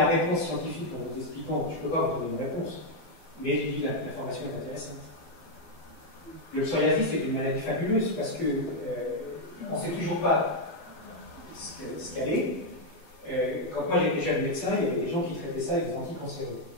réponse scientifique, en vous expliquant, je ne peux pas vous donner une réponse, mais je dis l'information est intéressante. Le psoriasis est une maladie fabuleuse parce que on ne sait toujours pas ce qu'elle est. Quand moi j'étais jeune médecin, il y avait des gens qui traitaient ça avec des anticancéreux.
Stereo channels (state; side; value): late; right; 12 ms